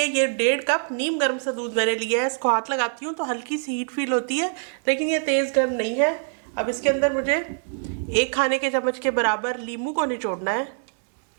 ये 1.5 कप नीम गर्म सा दूध मैंने लिया है। इसको हाथ लगाती हूँ तो हल्की सी हीट फील होती है, लेकिन ये तेज़ गर्म नहीं है। अब इसके अंदर मुझे 1 खाने के चम्मच के बराबर नींबू को निचोड़ना है।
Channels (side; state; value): left; silent; digital silence